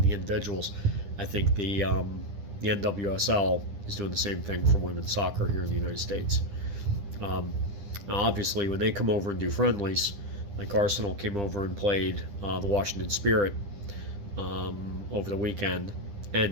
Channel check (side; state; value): left; late; 10 ms